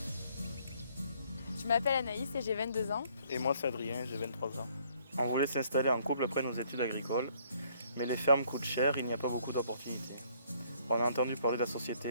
Je m'appelle Anaïs et j'ai 22 ans. Et moi c'est Adrien, j'ai 23 ans. On voulait s'installer en couple après nos études agricoles, mais les fermes coûtent cher, il n'y a pas beaucoup d'opportunités. On a entendu parler de la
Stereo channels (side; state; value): both; inverted; correlation -0.64